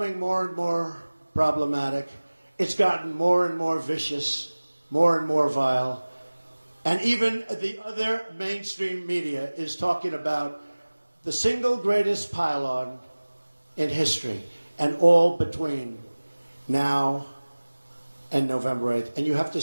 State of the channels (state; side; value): inverted; both; correlation -1.00